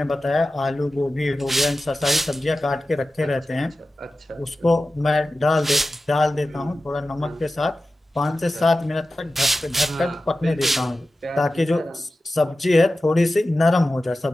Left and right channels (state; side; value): normal; both; correlation 0.94